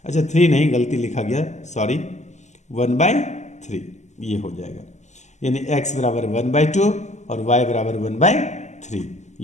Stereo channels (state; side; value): late; right; 0.34 ms